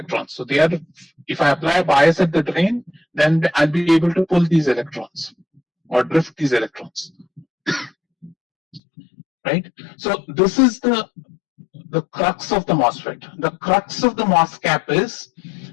So they are, if I apply a bias at the drain, then I'll be able to pull these electrons or drift these electrons. Right? So this is the crux of the MOSFET. The crux of the MOS cap is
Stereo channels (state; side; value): drops out; right; at 8.8 s